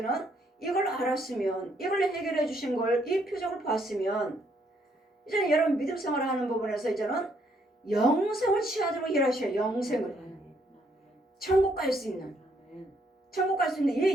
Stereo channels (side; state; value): both; normal; correlation 0.71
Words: 이걸 알았으면, 이걸 해결해 주신 걸, 이 표적을 봤으면, 이제는 여러분 믿음 생활을 하는 부분에서 이제는 영생을 취하도록 일하셔요. 영생을, 천국 갈 수 있는, 천국 갈 수 있는